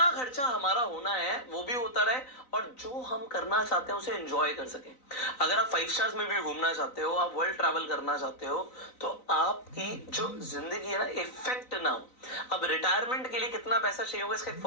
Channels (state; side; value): late; right; 3.9 ms